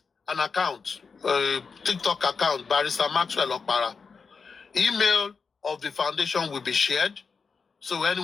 an account, a TikTok account, Barrister Maxwell Okpara. Email of the foundation will be shared, so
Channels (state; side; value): quieter; right; 5.2 dB